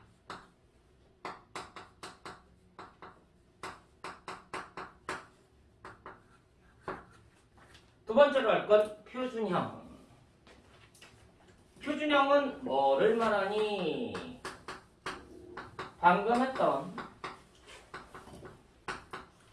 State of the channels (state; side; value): identical; both; correlation 1.00